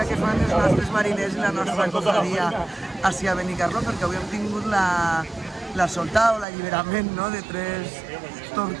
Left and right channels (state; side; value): drops out; left; at 6.5 s